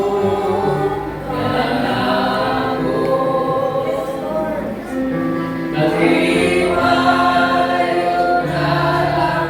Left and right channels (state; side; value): identical; both; correlation 1.00